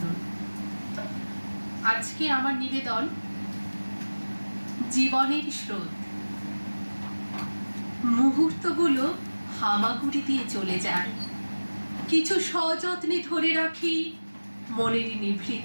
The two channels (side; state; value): both; inverted; correlation -1.00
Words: আজকে আমার নিবেদন জীবনের স্রোত। মুহূর্তগুলো হামাগুড়ি দিয়ে চলে যায়, কিছু সযত্নে ধরে রাখি মনের